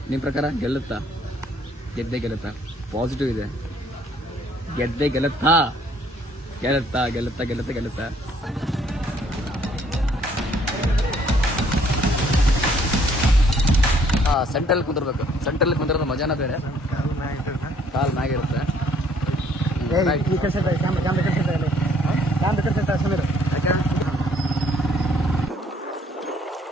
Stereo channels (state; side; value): normal; both; correlation 0.63